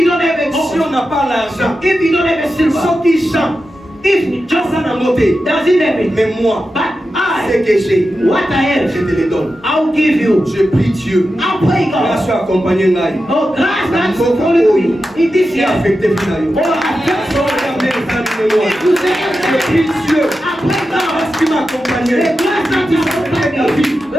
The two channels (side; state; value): both; normal; correlation 0.91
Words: don't have a si on gold, n'a pas l'argent, if you don't have a silver, ceux qui chantent, if Johnson Johnson a noté. doesn't have it, Mais moi, but ce I, que j'ai, what I je have, te le donne. I'll give you. Je prie Dieu. I'll pray Grâce God. à accompagner Ngai. Oh, grace that's follow me in this Et year. affecté Finayo. Oh, I pray So, regardez les amis de moi. if you say Je everything, prie Dieu. I pray God. Parce qu'il m'a accompagné. The grace that is upon me, I